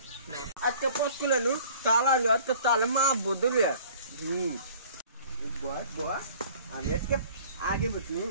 আজকে পোস্ট খুলে নু তালা আজকে তালে মা বদলে আমি আজকে আগে বসি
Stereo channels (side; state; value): both; inverted; correlation -0.50